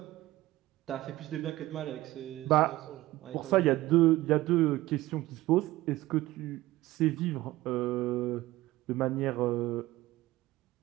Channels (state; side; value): quieter; left; 17.4 dB